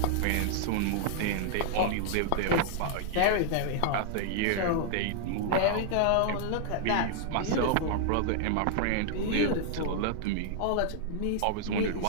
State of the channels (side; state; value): both; different; correlation -0.01